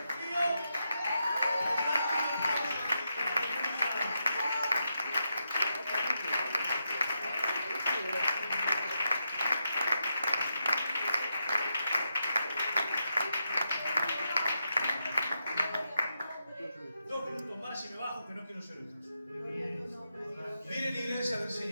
frío. Y me bajo, que no quiero ser otros. Miren, iglesia del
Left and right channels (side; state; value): both; inverted; correlation -0.85